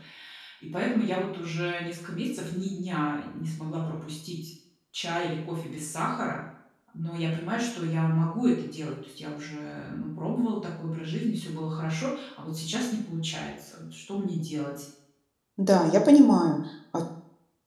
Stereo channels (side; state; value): both; identical; correlation 1.00